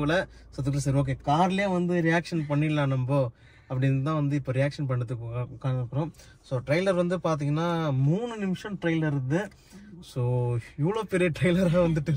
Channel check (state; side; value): identical; both; correlation 1.00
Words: ஸோ அதுக்குள்ள சரி ஓகே கார்லேயே வந்து ரியாக்ஷன் பண்ணிடலாம் நம்ம அப்படின்னு தான் வந்து இப்போ ரியாக்ஷன் பண்ணுறதுக்கு உட்காந்துருக்குறோம். ஸோ ட்ரெய்லர் வந்து பார்த்தீங்கன்னா 3 நிமிஷம் ட்ரெய்லர் இருக்குது. ஸோ இவ்வளோ பெரிய ட்ரெய்லராக வந்துட்டு